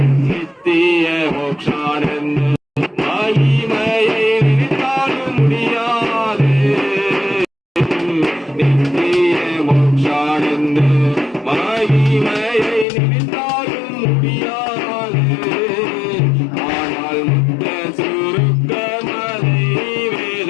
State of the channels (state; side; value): drops out; right; at 12.9 s